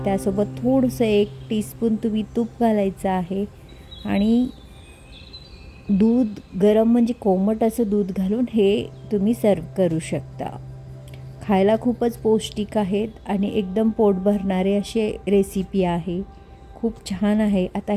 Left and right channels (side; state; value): both; identical; correlation 1.00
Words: त्यासोबत थोडंसं 1 टीस्पून तुम्ही तूप घालायचं आहे आणि दूध गरम म्हणजे कोमट असं दूध घालून हे तुम्ही सर्व करू शकता. खायला खूपच पौष्टिक आहेत आणि एकदम पोट भरणारे असे रेसिपी आहे. खूप छान आहे. आता